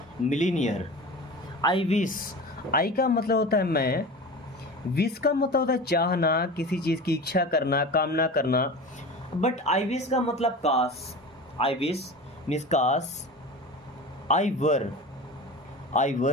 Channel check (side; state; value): both; normal; correlation 0.32